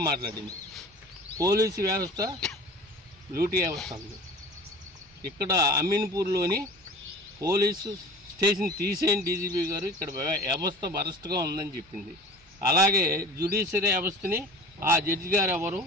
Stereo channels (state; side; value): normal; both; correlation 0.40